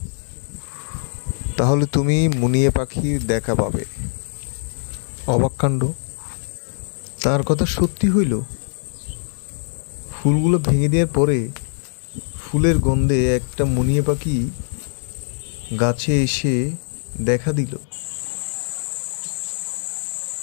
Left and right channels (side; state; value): right; silent; 64 dB below the other